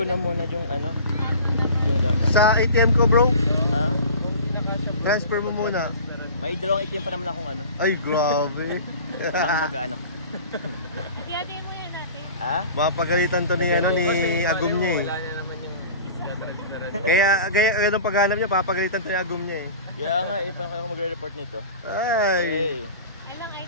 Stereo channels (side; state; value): both; inverted; correlation -0.39